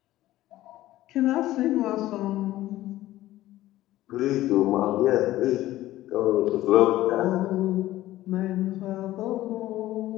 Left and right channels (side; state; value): right; quieter; 15.4 dB